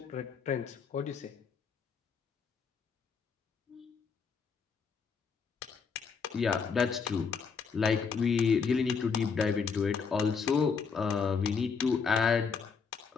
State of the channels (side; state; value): right; quieter; 5.7 dB